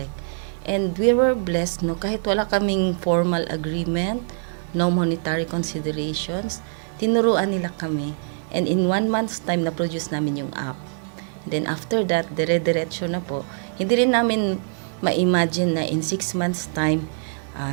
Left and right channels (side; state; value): left; silent; digital silence